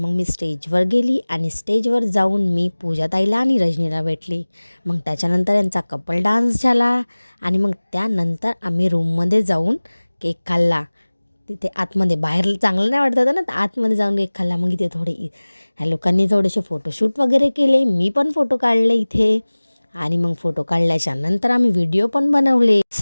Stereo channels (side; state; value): both; inverted; correlation -1.00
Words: मी स्टेजवर गेली आणि स्टेजवर जाऊन मी पूजाताईला आणि रजनीला भेटली. मग त्याच्यानंतर यांचा कपल डान्स झाला आणि मग त्यानंतर आम्ही रूममध्ये जाऊन केक खाल्ला. तिथे आतमध्ये, बाहेर चांगलं नाही वाटत होतं ना, तर आतमध्ये जाऊन केक खाल्ला. मग इथे ह्या लोकांनी थोडेसे फोटोशूट वगैरे केले, मी पण फोटो काढले इथे. आणि मग फोटो काढल्याच्या नंतर आम्ही व्हिडिओ पण बनवले.